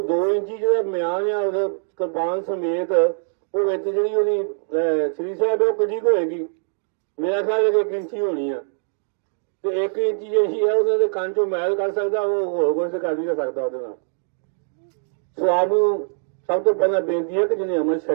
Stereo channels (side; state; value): left; silent; digital silence